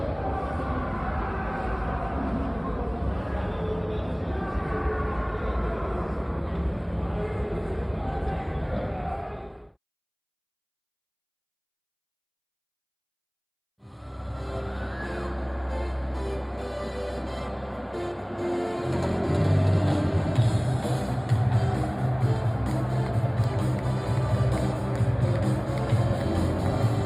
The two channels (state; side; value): identical; both; correlation 1.00